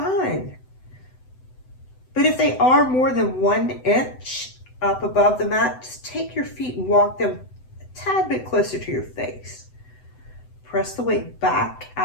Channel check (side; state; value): right; late; 7.9 ms